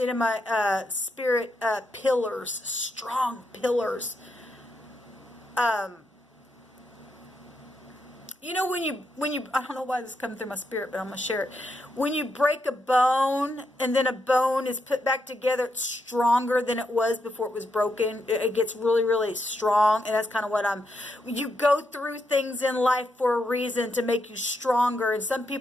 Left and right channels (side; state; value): both; normal; correlation 0.81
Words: in my spirit pillars, strong pillars. You know, when you, I don't know why this is coming through my spirit, but I'm going to share it. When you break a bone, and then a bone is put back together, it's stronger than it was before it was broken. It gets really, really strong. And that's kind of what you go through things in life for a reason, to make you stronger. And some